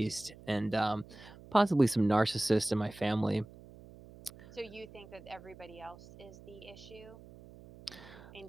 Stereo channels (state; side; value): noise; right; hum, 19 dB below the sound